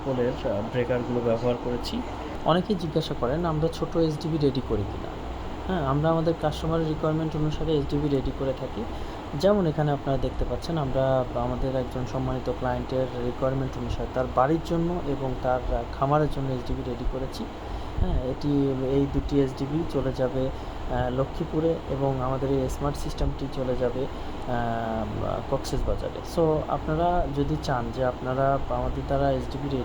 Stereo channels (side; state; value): both; identical; correlation 1.00